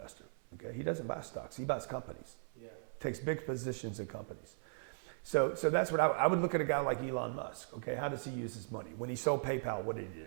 Okay, he doesn't buy stocks. He buys companies. Yeah. Takes big positions in companies. So that's what I would look at a guy like Elon Musk. Okay, how does he use his money? When he sold PayPal, what did he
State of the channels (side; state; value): left; silent; 52 dB below the other